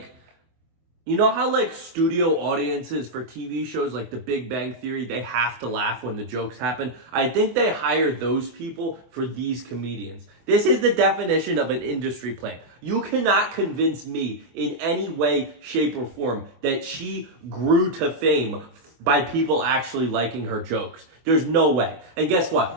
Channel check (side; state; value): left; late; 24 ms